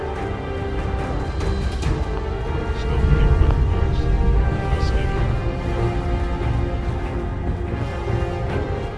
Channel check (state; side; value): identical; both; correlation 1.00